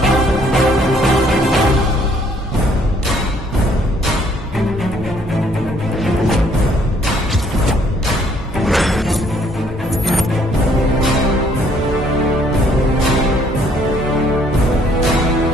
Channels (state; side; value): normal; both; correlation 0.64